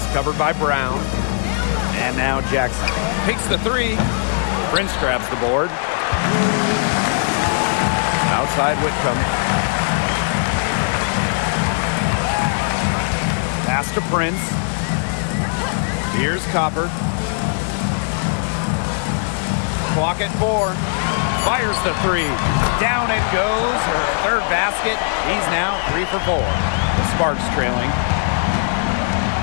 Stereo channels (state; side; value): silent; right; digital silence